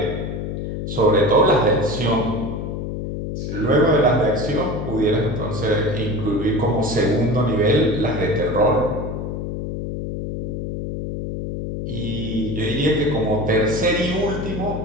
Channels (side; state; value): left; noise; hum, 5 dB below the sound